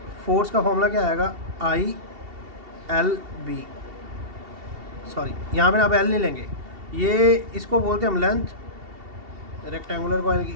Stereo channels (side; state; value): left; late; 2.7 ms